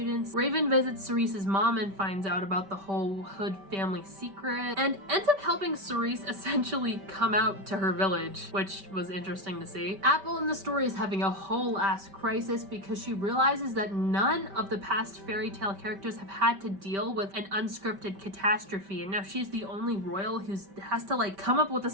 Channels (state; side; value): late; left; 5.2 ms